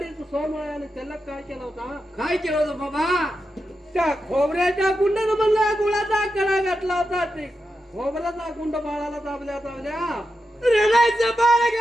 सोमळ्याने त्याला काय केलं होता? काय केलं होतं बाबा? त्या खोबऱ्याच्या गुंडानं म्हणला गुळाचा कडा घातला होता. ते खोबऱ्याचा गुंड बाळाला दाबल्या रडायचं बाळ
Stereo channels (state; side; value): normal; both; correlation 0.88